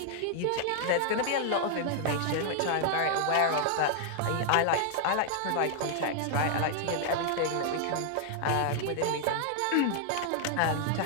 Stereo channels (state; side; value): different; both; correlation 0.00